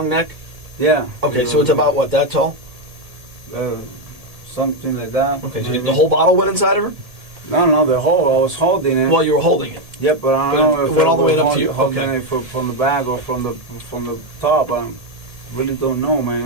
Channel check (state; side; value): late; left; 1.7 ms